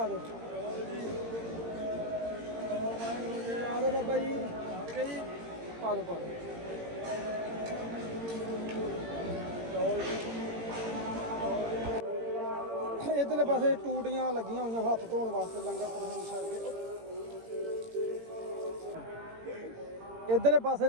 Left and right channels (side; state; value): left; late; 18 ms